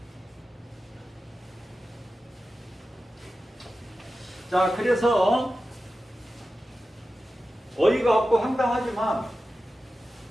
자, 그래서 어이가 없고 황당하지만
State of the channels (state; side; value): normal; both; correlation 0.93